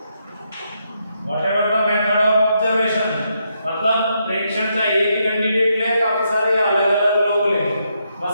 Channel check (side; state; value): both; inverted; correlation -0.79